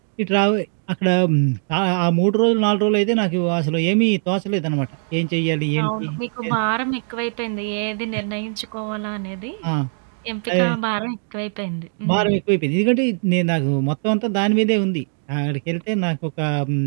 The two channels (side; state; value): left; silent; 65 dB below the other